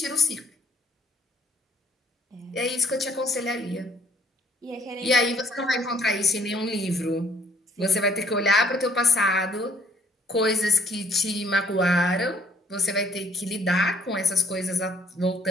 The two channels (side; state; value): both; normal; correlation 0.61